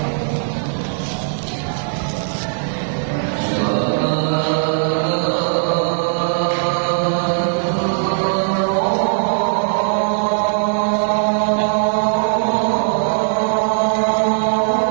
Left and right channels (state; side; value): silent; left; digital silence